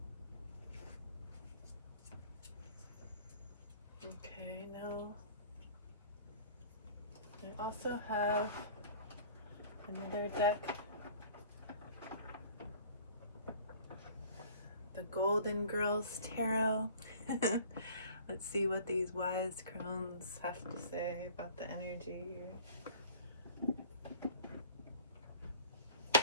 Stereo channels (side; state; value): both; inverted; correlation -0.47